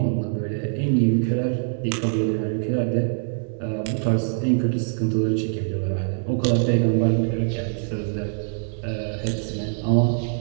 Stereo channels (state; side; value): silent; left; digital silence